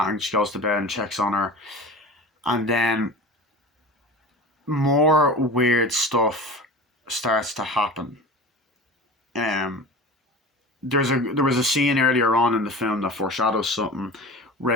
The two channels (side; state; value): both; normal; correlation 0.34